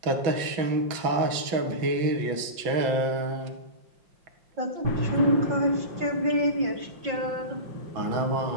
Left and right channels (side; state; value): left; late; 5.7 ms